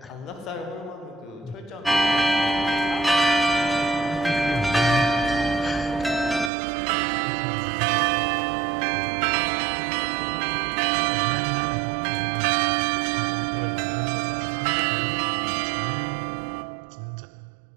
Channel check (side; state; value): left; drops out; at 6.5 s